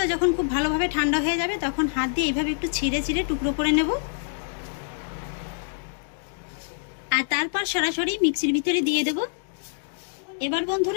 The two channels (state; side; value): silent; right; digital silence